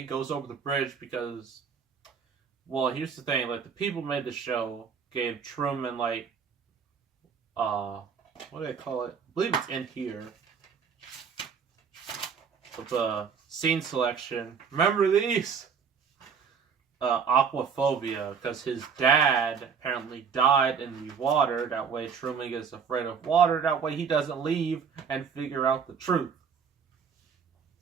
goes over the bridge because, well, here's the thing, like, the people who made the show gave Truman, like, what do they call it? I believe it's in here. With the scene selection. Remember these? Aquaphobia, because his dad apparently died in the water. That way Truman gets afraid of water. That way he doesn't leave and figure out the truth.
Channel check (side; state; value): left; quieter; 6.4 dB